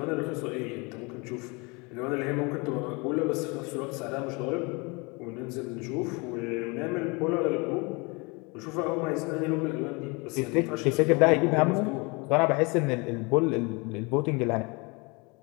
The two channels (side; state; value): right; quieter; 28.5 dB